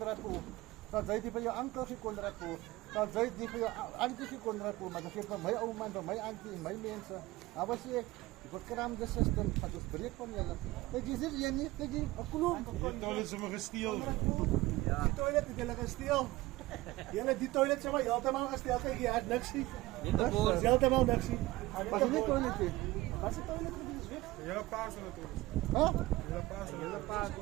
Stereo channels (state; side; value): quieter; left; 19.0 dB